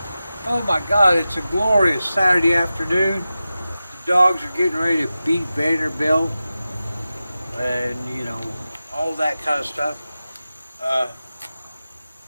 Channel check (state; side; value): inverted; both; correlation -0.94